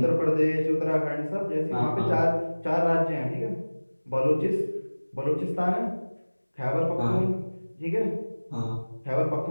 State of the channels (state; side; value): inverted; both; correlation -1.00